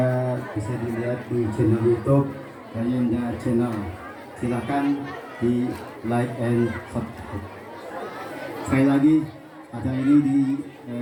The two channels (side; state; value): both; identical; correlation 1.00